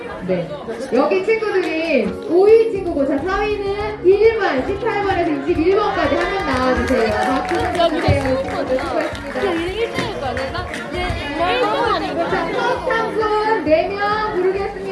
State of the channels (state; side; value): identical; both; correlation 1.00